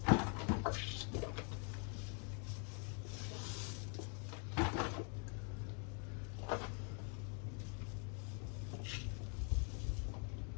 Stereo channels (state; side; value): quieter; right; 40.0 dB